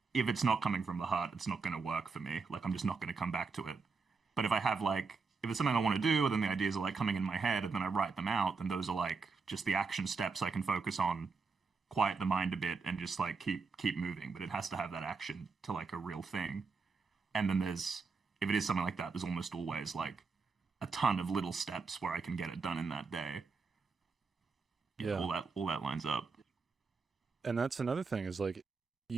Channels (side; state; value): left; quieter; 4.7 dB